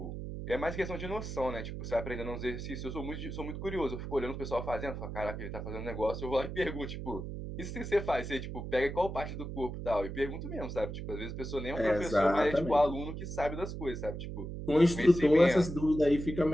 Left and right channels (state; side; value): noise; right; hum, 7 dB below the sound